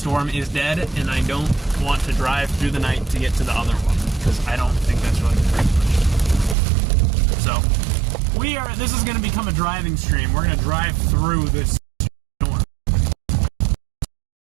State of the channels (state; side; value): drops out; left; at 6.6 s